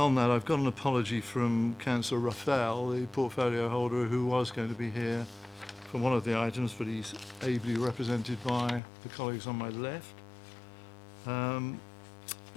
that, I've got an apology from Councillor Raphael, the portfolio holder, who was going to be here for one of the items, but he's ably represented by the colleagues on my left.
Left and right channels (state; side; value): drops out; right; at 8.8 s